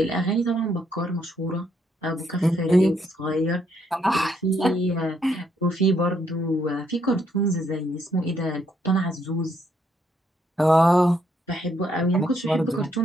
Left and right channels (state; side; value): normal; both; correlation 0.73